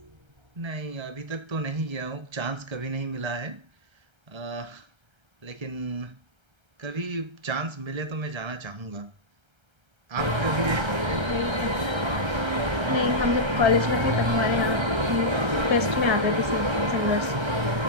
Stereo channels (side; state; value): left; late; 1.3 ms